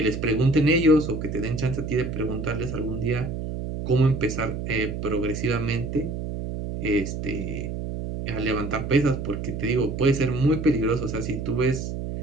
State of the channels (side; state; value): right; noise; hum, 5 dB below the sound